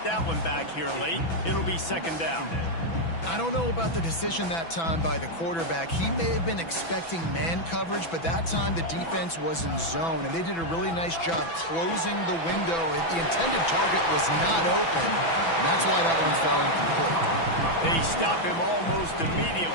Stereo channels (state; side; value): late; right; 6.0 ms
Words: that one back here late. It'll be second down. I don't know about the decision that time by the quarterback. He may have been expecting man coverage, but that time the defense was in zone, and they did a really nice job closing the window. The intended target was not open, and that's why that one fell incomplete. They stop him almost